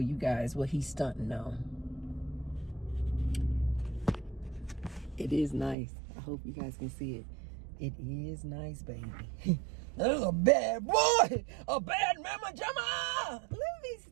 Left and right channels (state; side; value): drops out; left; at 5.8 s